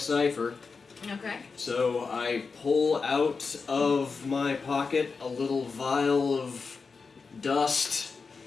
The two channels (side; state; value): right; quieter; 4.8 dB